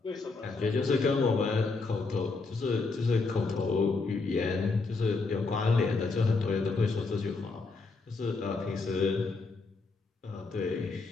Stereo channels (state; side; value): quieter; right; 3.9 dB